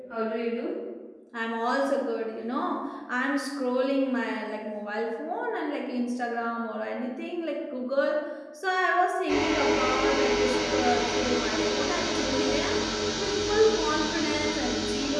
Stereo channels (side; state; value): both; identical; correlation 1.00